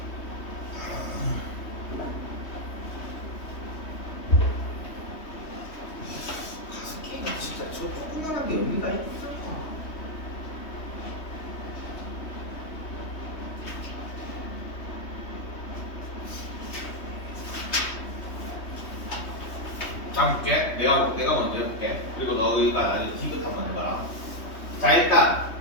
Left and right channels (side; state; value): right; late; 3.2 ms